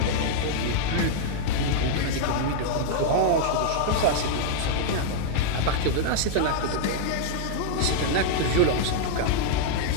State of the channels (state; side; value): different; both; correlation -0.01